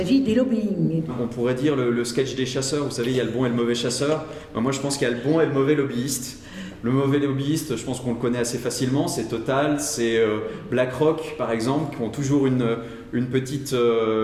des lobbying. On pourrait dire le sketch des chasseurs, vous savez, il y a le bon et le mauvais chasseur. Moi, je pense qu'il y a le bon et le mauvais lobbyiste. Le mauvais lobbyiste, je pense qu'on le connaît assez facilement, c'est Total, c'est BlackRock par exemple, qui ont toujours un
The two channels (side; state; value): both; identical; correlation 1.00